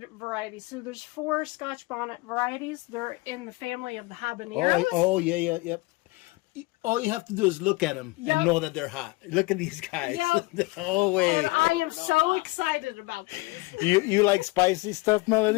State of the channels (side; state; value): right; quieter; 23.7 dB